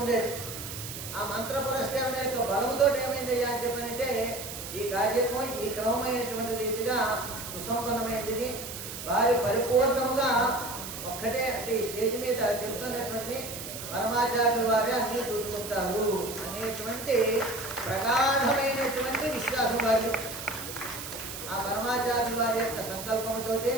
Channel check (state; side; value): noise; right; hiss, 9 dB below the sound